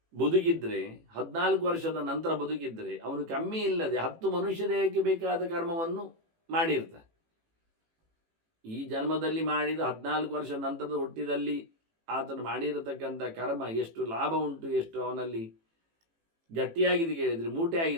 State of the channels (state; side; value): late; left; 18 ms